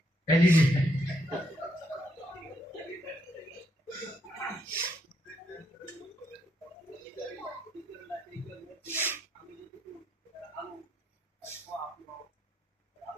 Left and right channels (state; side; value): normal; both; correlation 0.75